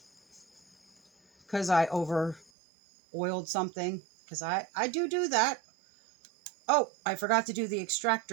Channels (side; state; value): left; drops out; at 2.5 s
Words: because I over oiled something, because I do that. Oh, I forgot to do the